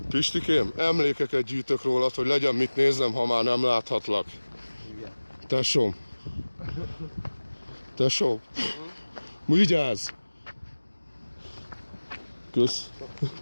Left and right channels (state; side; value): inverted; both; correlation -1.00